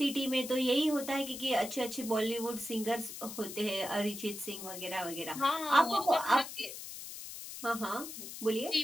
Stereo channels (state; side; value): noise; left; hiss, 10 dB below the sound